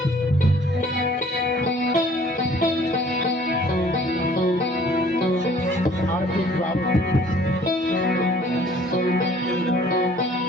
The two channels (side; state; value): both; normal; correlation 0.55